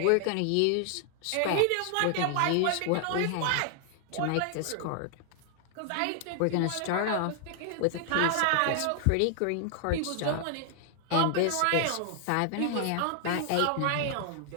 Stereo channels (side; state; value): both; different; correlation 0.00